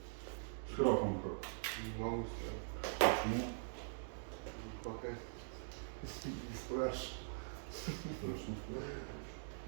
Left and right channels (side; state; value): left; silent; digital silence